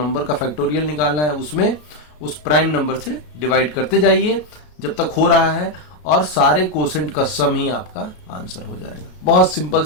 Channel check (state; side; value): late; right; 33 ms